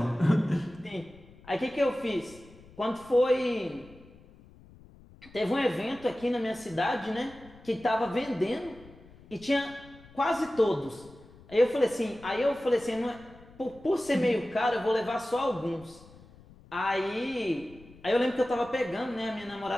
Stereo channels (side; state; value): left; noise; rumble, 23 dB below the sound